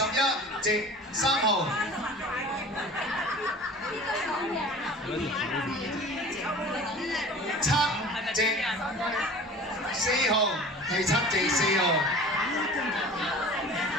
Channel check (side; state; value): both; normal; correlation 0.41